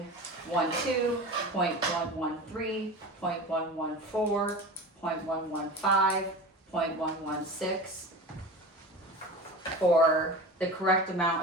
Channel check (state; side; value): normal; both; correlation 0.32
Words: .113, .114, .115, .116, for the correct